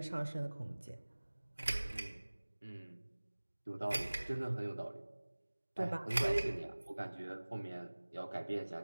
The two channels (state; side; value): inverted; both; correlation -1.00